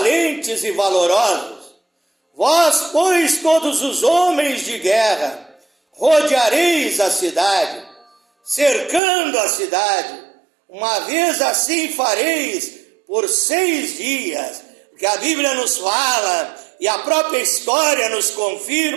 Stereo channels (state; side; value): drops out; left; at 9.0 s